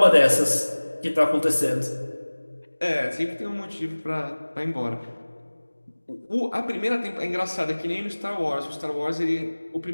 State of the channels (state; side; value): inverted; both; correlation -1.00